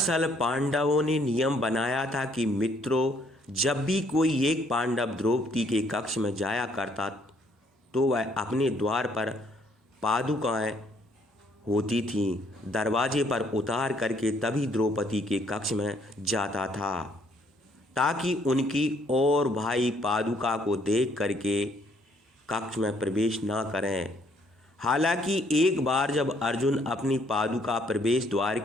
पांडवों ने नियम बनाया था कि मित्रों, जब भी कोई एक पांडव द्रौपदी के कक्ष में जाया करता तो वह अपने द्वार पर पादुकाएं होती थीं, दरवाजे पर उतार करके तभी द्रौपदी के कक्ष में जाता था, ताकि उनकी और भाई पादुका को देख करके कक्ष में प्रवेश ना करें। हालांकि एक बार जब अर्जुन अपनी पादुका प्रवेश द्वार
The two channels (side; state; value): both; normal; correlation 0.66